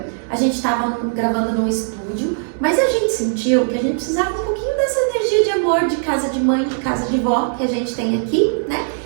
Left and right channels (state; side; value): silent; left; digital silence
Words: A gente estava gravando num estúdio, mas a gente sentiu que a gente precisava um pouquinho dessa energia de amor de casa de mãe, de casa de vó que a gente tem aqui, né?